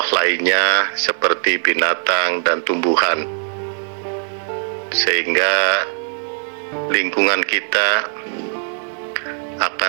lainnya seperti binatang dan tumbuhan, sehingga lingkungan kita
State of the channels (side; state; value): left; silent; 66 dB below the other